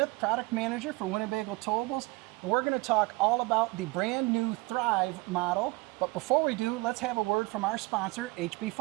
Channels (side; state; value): left; quieter; 23.0 dB